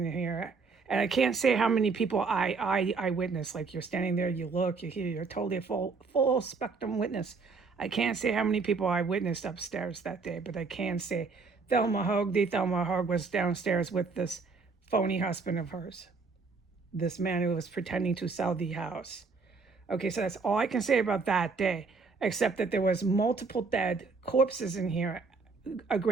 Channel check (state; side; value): quieter; left; 4.6 dB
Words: here. And I can't say how many people I witnessed. Like you're standing there, you look, you hear, you're totally a full spectrum witness. I can't say how many people I witnessed upstairs that day, but I can say Thelma Houge was downstairs with this phony husband of hers. This man who was pretending to sell the house. Okay, so that's all I can say about that day, except that there was multiple dead corpses in here. A